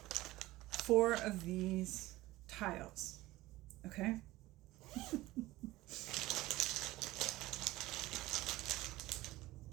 of these tiles, okay?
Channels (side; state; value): left; quieter; 17.9 dB